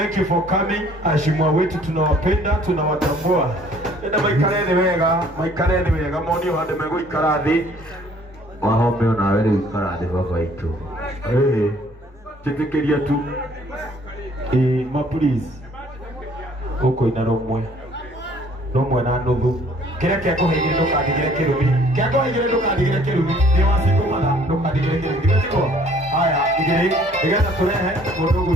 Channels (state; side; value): normal; both; correlation 0.58